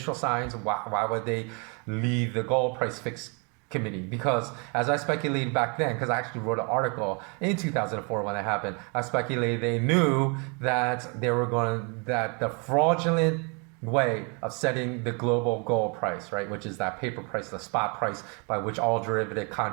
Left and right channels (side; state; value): left; quieter; 34.1 dB